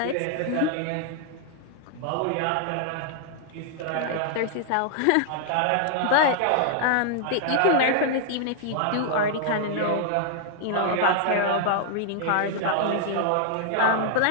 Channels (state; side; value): different; both; correlation 0.00